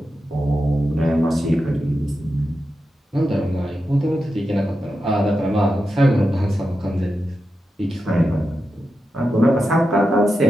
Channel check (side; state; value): both; normal; correlation 0.89